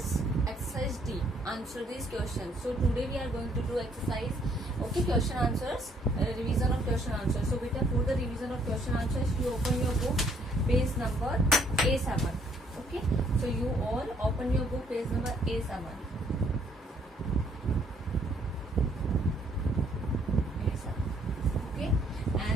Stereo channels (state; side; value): normal; both; correlation 0.66